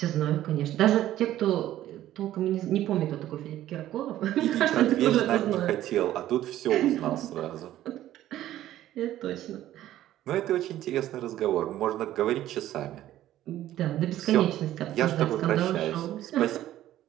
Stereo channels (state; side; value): quieter; left; 13.4 dB